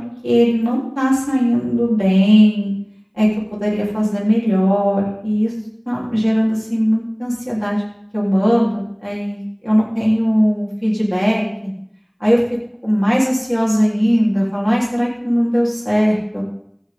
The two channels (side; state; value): both; identical; correlation 1.00